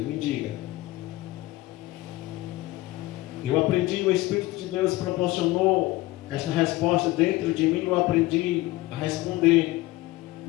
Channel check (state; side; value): quieter; right; 18.9 dB